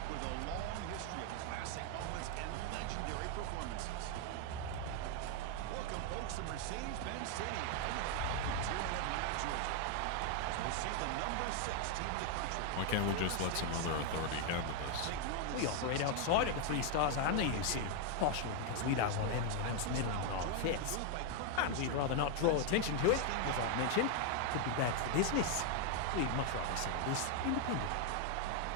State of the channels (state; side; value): different; both; correlation 0.01